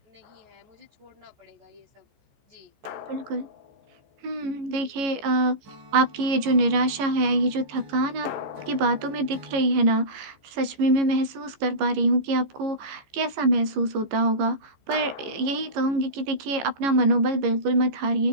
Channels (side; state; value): left; late; 15 ms